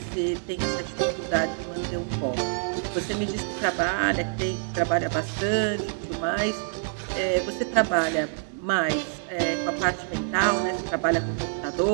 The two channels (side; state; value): left; silent; 61 dB below the other